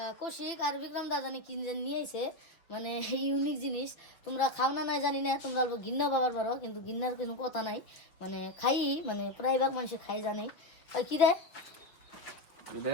কৌশিক আর বিক্রম দা জানি কি নিয়ে এসে, মানে ইউনিক জিনিস। তোমরা খাও না নাই জানি না, তোমরা অল্প ঘিন্নাও পাবার পারো, কিন্তু ঘিন্নার কোনো কথা নাই। মানে খাই, মানে প্রায় ভাগ মানুষ খাই জানেই। কি রে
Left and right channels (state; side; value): late; right; 6.0 ms